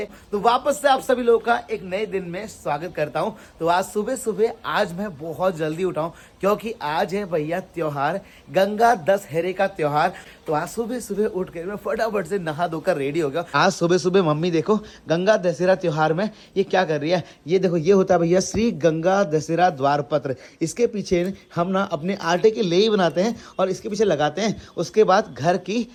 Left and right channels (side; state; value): both; identical; correlation 1.00